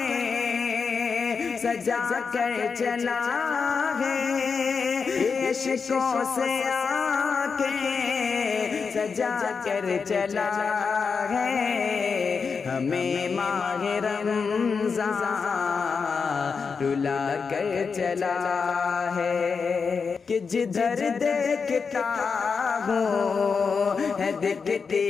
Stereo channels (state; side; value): quieter; right; 5.4 dB